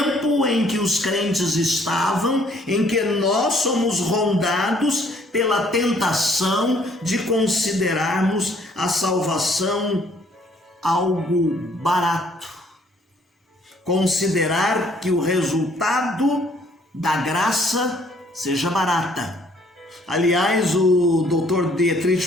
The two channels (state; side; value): normal; both; correlation 0.63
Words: em que os crentes estavam, em que nós somos rondados pela tentação de considerarmos a salvação algo barato, considerar que o resultado da graça seja barata. Aliás, o Dr.